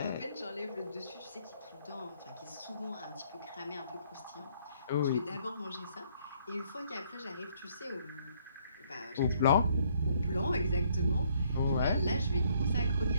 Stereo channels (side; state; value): both; inverted; correlation -0.66